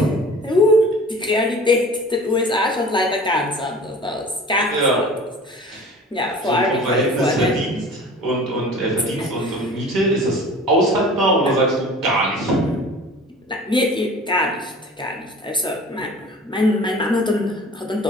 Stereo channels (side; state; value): both; normal; correlation 0.43